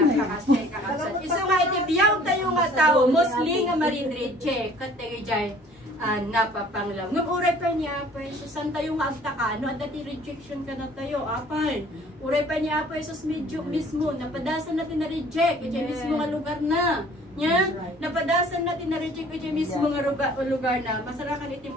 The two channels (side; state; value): both; normal; correlation 0.53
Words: Iso nga iti biyaw tayo nga tao, mostly nga marinridche, kat tayo dyan, napapanglaw. Ngam uray pa niya, san tayo nga agtaka, no? At dati rejection ka na tayo, apal. Uray pa niya, sus medyo mismo, napadasan natin na reject, kaya mismo nga lugar na. Nya, napadasan natin na reject kaya mismo nga lugar na. Masarakan iti